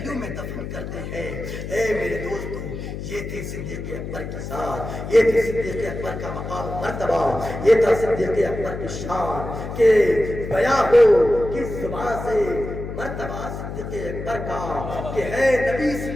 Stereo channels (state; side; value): noise; left; hum, 7 dB below the sound